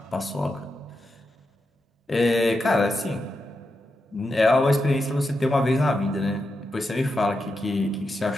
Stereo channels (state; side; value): normal; both; correlation 0.87